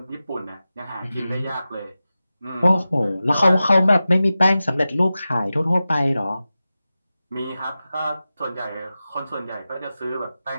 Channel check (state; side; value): inverted; both; correlation -0.94